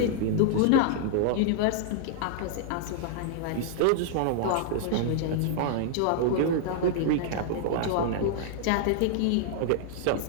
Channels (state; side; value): different; both; correlation -0.01